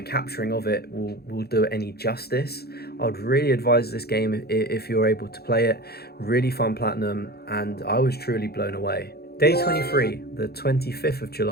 capturing of it will do it any justice. I would really advise this game if you're able to play it. Really fun platinum, and I was truly blown away. Day 23, the 25th of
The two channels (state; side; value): late; right; 0.46 ms